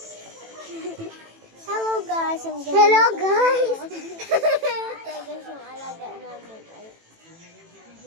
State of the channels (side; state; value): left; late; 18 ms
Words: Hello guys! Hello guys! Ito guys yung alaga namin.